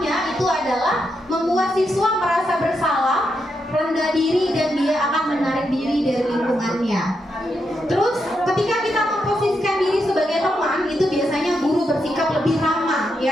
itu adalah membuat siswa merasa bersalah, rendah diri, dan dia akan menarik diri dari lingkungannya. Terus ketika kita memposisikan diri sebagai teman, itu biasanya guru bersikap lebih ramah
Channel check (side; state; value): both; normal; correlation 0.83